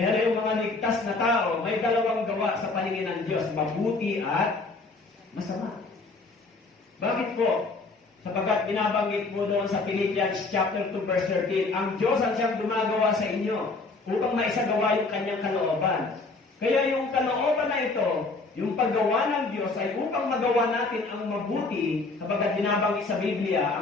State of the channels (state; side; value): quieter; right; 3.6 dB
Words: yung mga ligtas na tao, may dalawang gawa sa paningin ng Diyos. Mabuti at masama. Bakit po? Sapagkat binabanggit po doon sa Philippians chapter 2 verse 13, ang Diyos ang siyang gumagawa sa inyo upang maisagawa yung kanyang kalooban. Kaya yung kalooban na ito, yung paggawa ng Diyos ay upang magawa natin ang mabuti, sapagkat binabanggit sa Biblia,